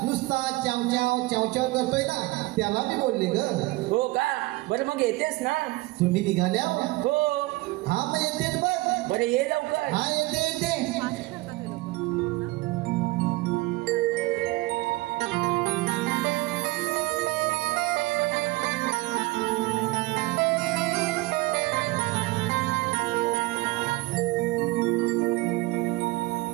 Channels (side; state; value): left; quieter; 21.0 dB